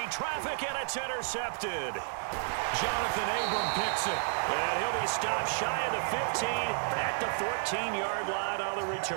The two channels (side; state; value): left; silent; digital silence